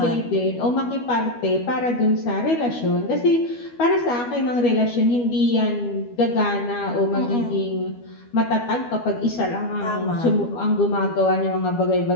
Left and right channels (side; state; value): right; late; 12 ms